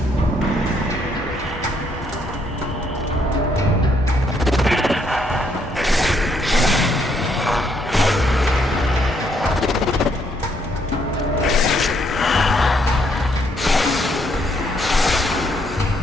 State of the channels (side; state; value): both; normal; correlation 0.71